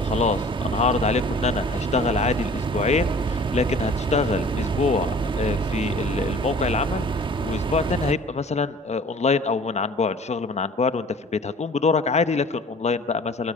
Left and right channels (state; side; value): normal; both; correlation 0.48